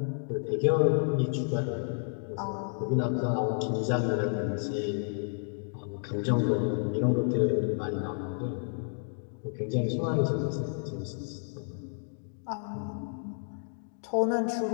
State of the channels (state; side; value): silent; right; digital silence